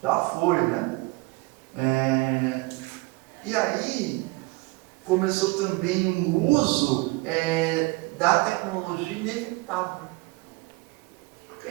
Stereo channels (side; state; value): left; quieter; 24.0 dB